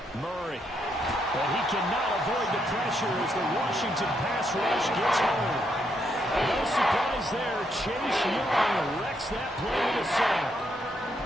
Murray. But he cannot avoid the pressure as the Washington pass rush gets home. No surprise there. Chase Young wrecks that play with a sack.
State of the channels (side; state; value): both; normal; correlation 0.77